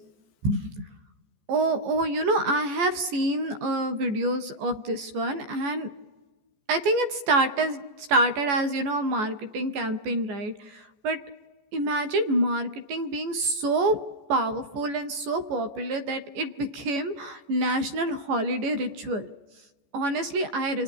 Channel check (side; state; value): left; late; 14 ms